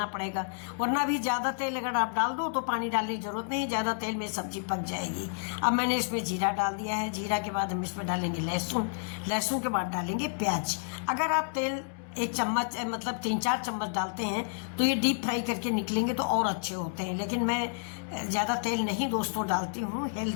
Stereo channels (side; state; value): right; silent; digital silence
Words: पड़ेगा, वरना भी ज़्यादा तेल अगर आप डाल दो तो पानी डालने की ज़रूरत नहीं, ज़्यादा तेल में सब्जी पक जाएगी। अब मैंने इसमें जीरा डाल दिया है। जीरा के बाद हम इसमें डालेंगे लहसुन, लहसुन के बाद डालेंगे प्याज। अगर आप तेल 1 चम्मच मतलब 3-4 चम्मच डालते हैं तो ये डीप फ्राई करके निकलेंगे तो और अच्छे होते हैं, लेकिन मैं ज़्यादा तेल नहीं दोस्तों डालती हूँ।